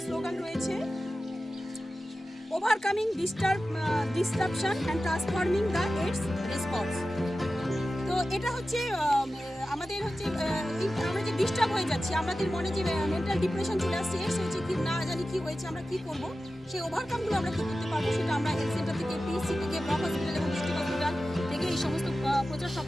স্লোগান রয়েছে, overcoming disruption and transforming the AIDS response. তো এটা হচ্ছে আমাদের হচ্ছে আমরা যে ডিস্টার্ব হয়ে যাচ্ছি, আমাদের মনে যে মেন্টাল ডিপ্রেশন চলে আসছে, এডস হয়েছে কি না জানি কি হয়েছে, আমরা কি করব, সেই ওভারকামগুলো আমরা কি করতে পারবো, সেটা আমরা হেলথ সেন্টার থেকে, PSC থেকে, ব্লক হসপিটাল এবং ডিস্ট্রিক্ট হসপিটাল থেকে এই সমস্ত প্রচার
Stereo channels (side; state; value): both; normal; correlation 0.94